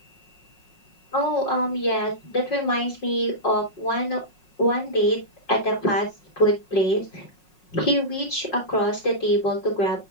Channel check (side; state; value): right; late; 5.5 ms